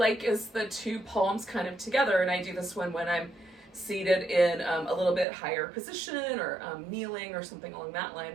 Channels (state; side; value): drops out; left; at 5.2 s